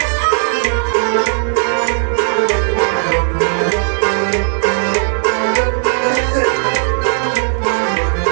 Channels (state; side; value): silent; left; digital silence